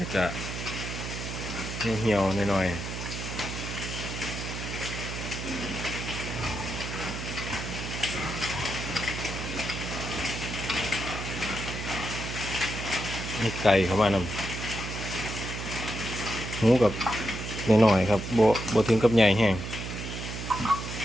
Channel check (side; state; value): right; noise; hum, 6 dB below the sound